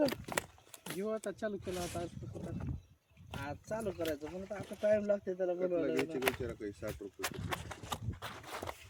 घेऊ आता चालू केलं आता आज चालू करायचं पण आता टाइम लागते त्याला बनवायला 60 रुपये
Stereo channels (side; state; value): both; identical; correlation 1.00